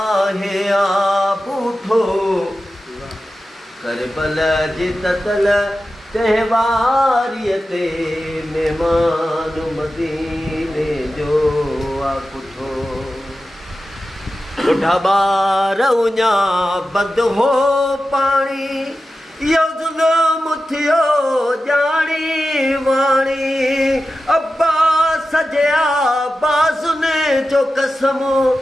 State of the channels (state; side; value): normal; both; correlation 0.93